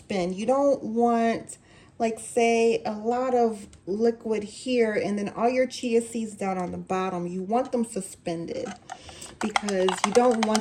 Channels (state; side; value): identical; both; correlation 1.00